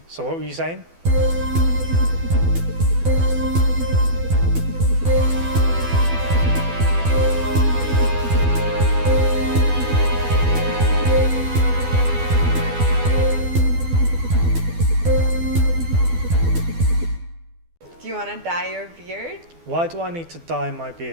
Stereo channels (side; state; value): left; late; 12 ms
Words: So what were you saying? Do you want to dye your beard? Why do I need to dye my